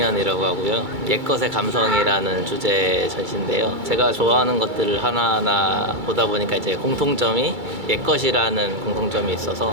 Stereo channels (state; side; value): late; left; 2.3 ms